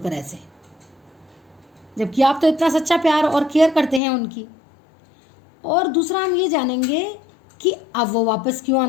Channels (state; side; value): drops out; right; at 4.0 s